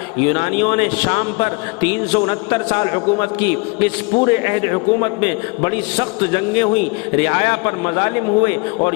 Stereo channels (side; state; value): right; quieter; 29.9 dB